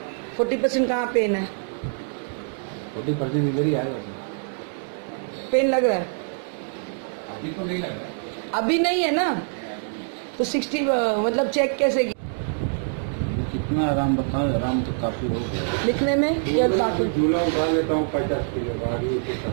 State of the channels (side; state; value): left; silent; digital silence